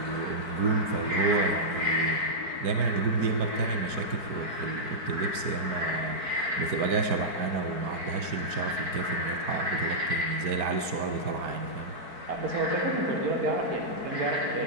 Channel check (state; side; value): late; left; 4.5 ms